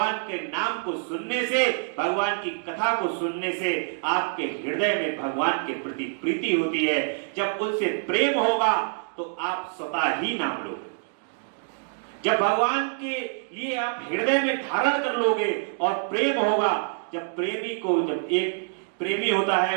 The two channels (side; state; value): left; silent; digital silence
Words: के नाम को सुनने से, भगवान की कथा को सुनने से आपके हृदय में भगवान के प्रति प्रीति होती है। जब उनसे प्रेम होगा तो आप स्वतः ही नाम लोगे। जब भगवान के लिए आप हृदय में धारण कर लोगे और प्रेम होगा, जब एक प्रेमी होता